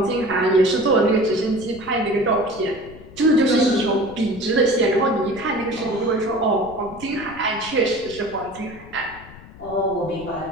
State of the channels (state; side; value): noise; left; rumble, 19 dB below the sound